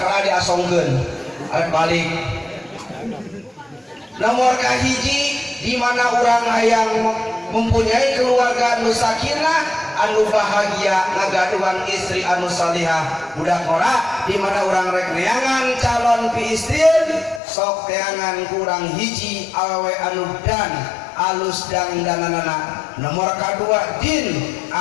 diasongkeun arek balik nomor kahiji di mana orang hayang mempunyai keluarga anu sakinah anu bahagia ngagaduhan istri anu salihah budak ora di mana orang rek neangan calon pi istrin sok teangan kurang hiji awewe anu dan alus dandanana nomor kedua din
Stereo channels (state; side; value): drops out; right; at 17.4 s